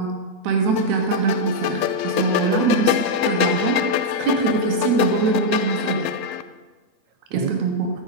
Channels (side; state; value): left; late; 8.1 ms